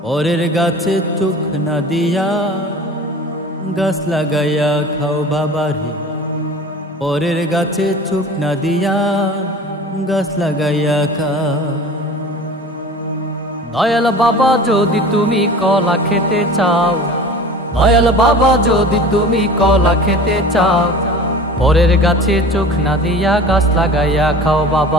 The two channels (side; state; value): both; normal; correlation 0.39